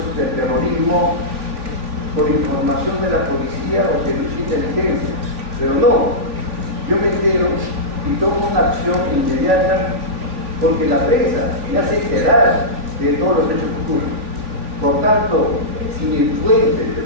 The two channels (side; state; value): left; late; 3.4 ms